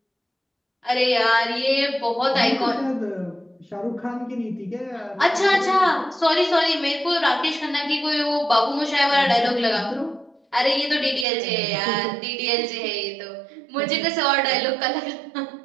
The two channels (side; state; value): left; drops out; at 11.2 s